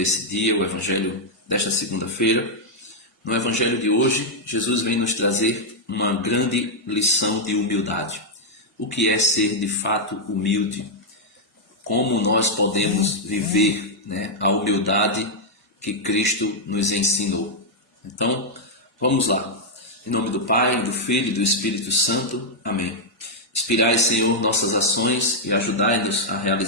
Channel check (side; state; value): both; normal; correlation -0.04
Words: dia, o Evangelho desta segunda-feira. No Evangelho de hoje, Jesus vem nos trazer uma grande lição de humildade. O que é ser de fato humilde? Como nós podemos viver, a humildade que Cristo nos ensinou? Então, vamos lá. Em nome do Pai, do Filho e do Espírito Santo. Amém. Inspirai, Senhor, nossas ações e ajudai-nos a